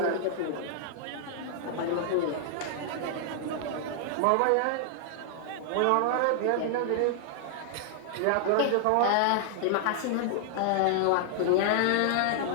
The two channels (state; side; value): different; both; correlation -0.01